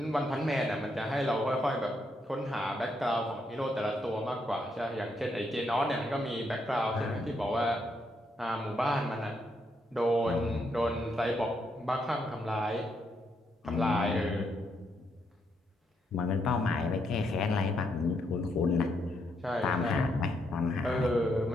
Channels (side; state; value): both; normal; correlation 0.77